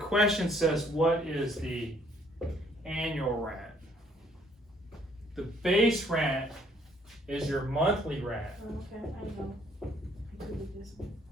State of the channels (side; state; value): both; normal; correlation 0.64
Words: says, what is the annual rent? The base rent is your monthly rent. Okay, I know. I could do this one.